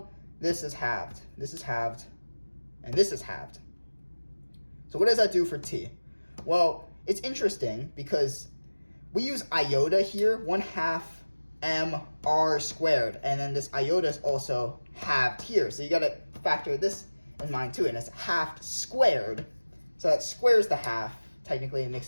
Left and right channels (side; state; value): both; inverted; correlation -1.00